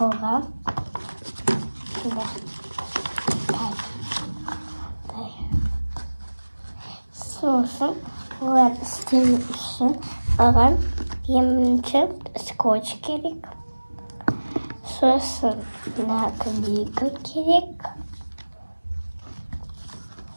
Sosun var istemişim. Babam yemin için skoç gerek. Sosun nakliyka gerek.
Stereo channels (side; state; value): both; inverted; correlation -1.00